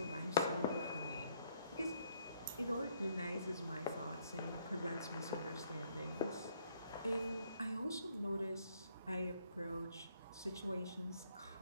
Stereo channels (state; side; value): inverted; both; correlation -0.67